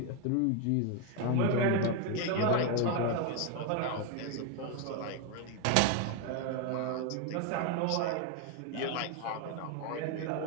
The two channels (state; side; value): different; both; correlation 0.01